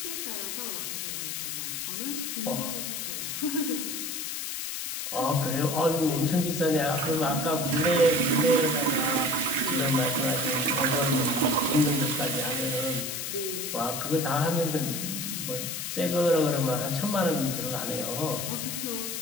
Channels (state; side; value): noise; left; hiss, 4 dB below the sound